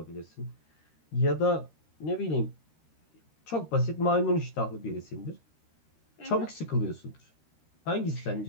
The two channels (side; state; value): right; late; 13 ms